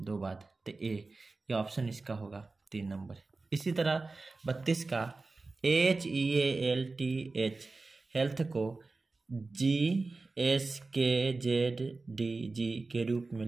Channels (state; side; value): quieter; left; 3.6 dB